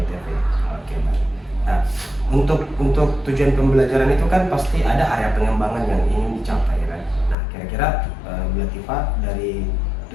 baik. Nah, untuk tujuan pembelajaran itu kan pasti ada area pengembangan yang ingin dicapai, kan? Nah, kira-kira Bu Latifah dari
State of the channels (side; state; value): right; drops out; at 7.4 s